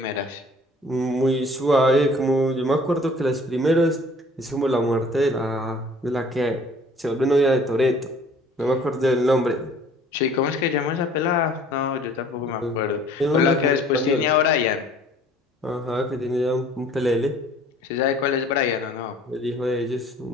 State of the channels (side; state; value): both; normal; correlation 0.53